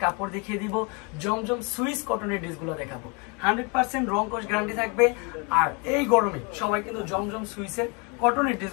কাপড় দেখিয়ে দিব। জমজম সুইস কটনের ড্রেসগুলো দেখাবো। 100% রং কস গ্যারান্টি থাকবে। আর এই গরমে সবাই কিন্তু জমজম সুইসের কটনের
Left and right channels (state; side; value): quieter; right; 32.1 dB